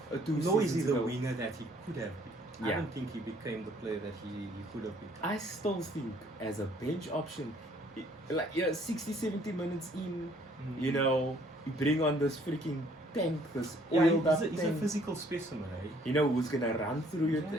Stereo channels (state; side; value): normal; both; correlation 0.61